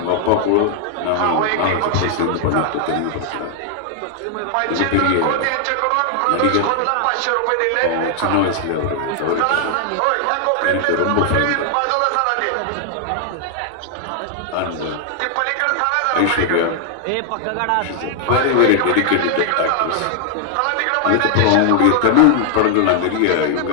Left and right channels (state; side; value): different; both; correlation 0.00